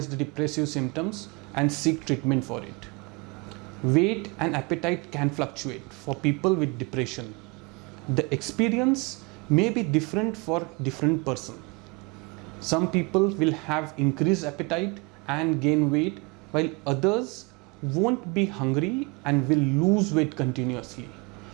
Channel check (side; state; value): left; quieter; 29.0 dB